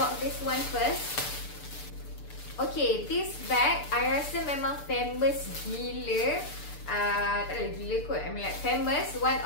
this one first. Okay, this bag I rasa memang famous gila. Tak ada gila kot, I mean like famous, one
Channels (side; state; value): right; late; 6.8 ms